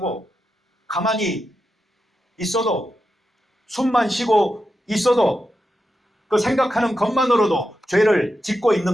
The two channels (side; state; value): both; normal; correlation 0.88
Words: 가만히 있어도 숨만 쉬고 있어도 그 생각하는 것만으로도 죄를 짓고